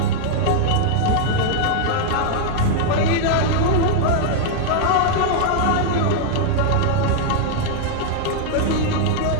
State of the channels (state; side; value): different; both; correlation -0.01